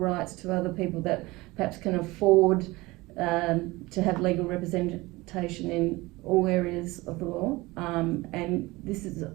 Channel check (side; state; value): left; quieter; 21.4 dB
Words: to other people that perhaps can afford to have legal representation in all areas of the law, and this is